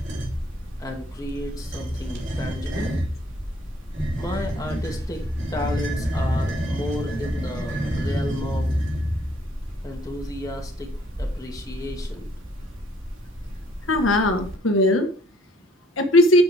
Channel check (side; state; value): both; normal; correlation 0.61